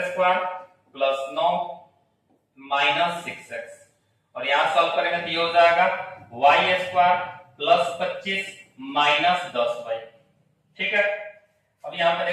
square plus 9 minus 6x, और यहाँ सॉल्व करेंगे तो ये हो जाएगा y square plus 25 minus 10y, ठीक है। अब यहाँ पे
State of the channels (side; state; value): both; identical; correlation 1.00